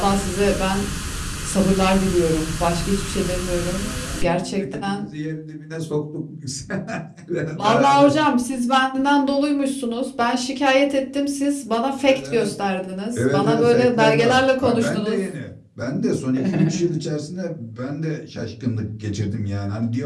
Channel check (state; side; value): identical; both; correlation 1.00